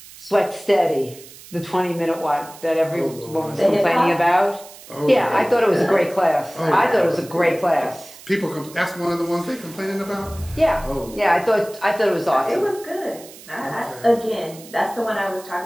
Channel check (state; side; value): noise; right; hiss, 19 dB below the sound